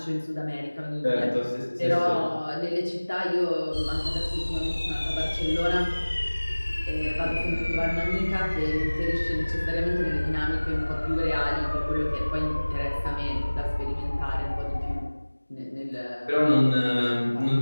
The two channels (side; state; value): both; inverted; correlation -1.00